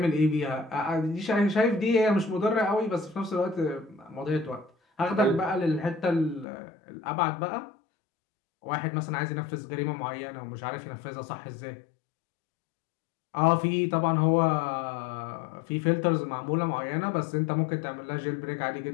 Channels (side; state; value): right; drops out; at 6.5 s